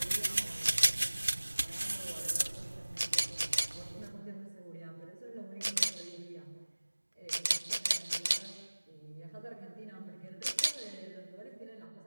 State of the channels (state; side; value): inverted; both; correlation -1.00